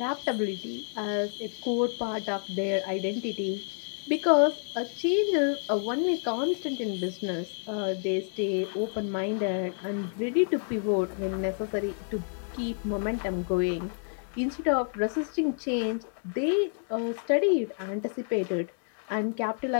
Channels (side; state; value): right; silent; 58 dB below the other